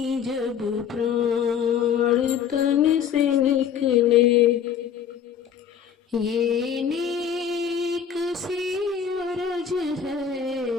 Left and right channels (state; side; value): quieter; right; 7.9 dB